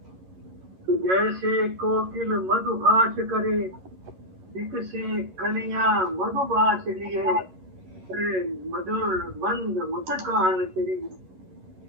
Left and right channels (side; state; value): left; late; 11 ms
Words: तो जैसे कोकिल मधुभाष करे, से कलियां मधुभाष लिए, मधुर मंद मुस्कान तेरी,